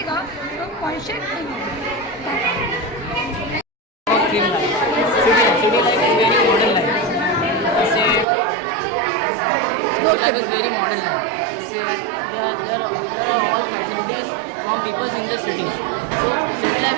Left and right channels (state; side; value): drops out; left; at 8.2 s